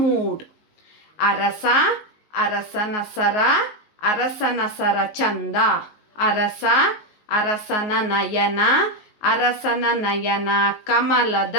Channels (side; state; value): right; late; 19 ms